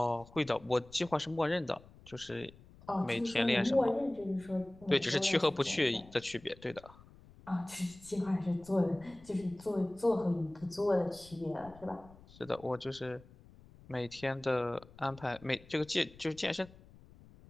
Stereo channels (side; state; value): left; noise; rumble, 22 dB below the sound